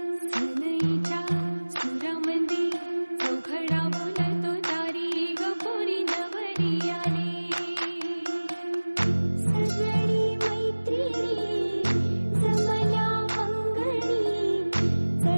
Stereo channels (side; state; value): both; inverted; correlation -1.00